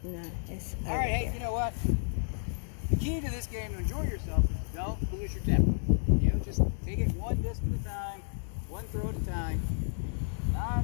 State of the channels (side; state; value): right; silent; 57 dB below the other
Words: No, it's All right, hey, you know what? The key to this game to enjoy yourself is don't lose your temper. You know, just take it one disc at a time, one throw at a time. Not